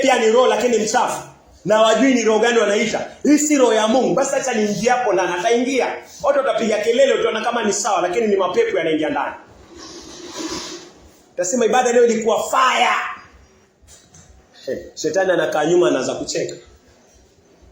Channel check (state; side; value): identical; both; correlation 1.00